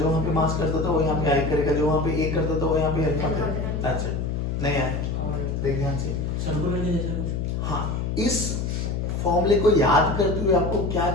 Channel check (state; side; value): noise; left; hum, 2 dB below the sound